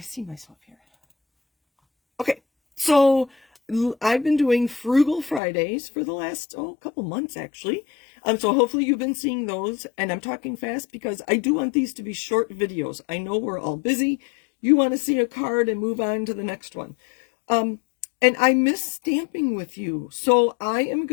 see myself here. Okay. So I've been doing Frugal Fridays for the last couple months actually. So hopefully you've been seeing those, and I'm talking fast because I do want these to be short videos. I know we're all busy. You want to see a card and move on to the next one. And I miss stamping with you. So I am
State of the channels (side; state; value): right; drops out; at 5.4 s